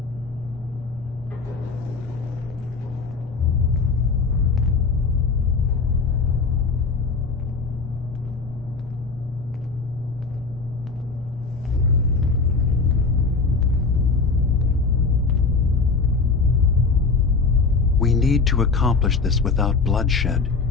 We need to accomplish this without bloodshed.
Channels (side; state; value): right; quieter; 4.4 dB